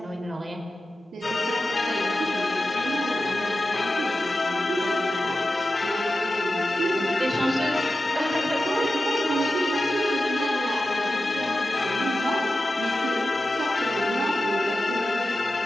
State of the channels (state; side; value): normal; both; correlation 0.92